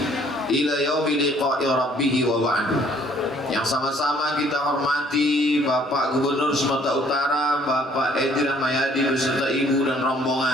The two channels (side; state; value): both; normal; correlation 0.60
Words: ila yaumi liqa'i rabbih wa ba'du. Yang sama-sama kita hormati Bapak Gubernur Sumatera Utara, Bapak Edi Rahmayadi beserta Ibu dan